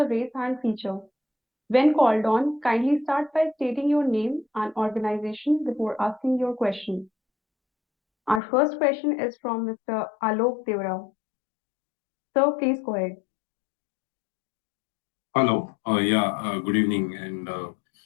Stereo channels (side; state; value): right; drops out; at 8.4 s